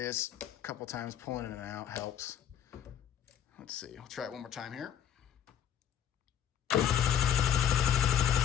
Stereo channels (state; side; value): quieter; right; 9.4 dB